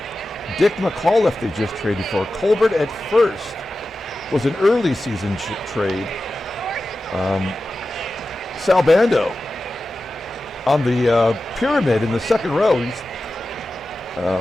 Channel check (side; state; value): both; normal; correlation 0.94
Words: Dick McAULIFFE they just traded for. COLBERT at first was an early season trade. Sal Bando on the pyramid in the second row. He's